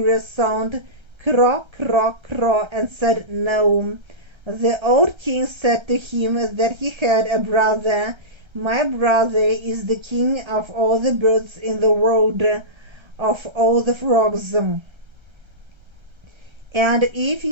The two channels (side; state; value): left; late; 1.3 ms